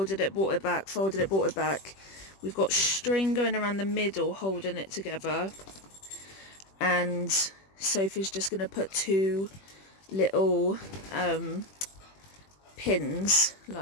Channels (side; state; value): right; late; 21 ms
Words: it, brought it back, folded it, brought it back. We've got string going around the middle holding it together, and Sophie's just going to put two little pins,